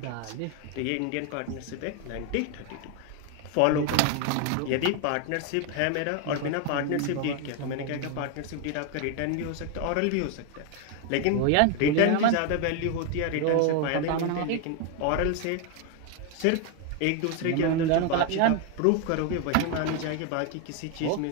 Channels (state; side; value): different; both; correlation 0.01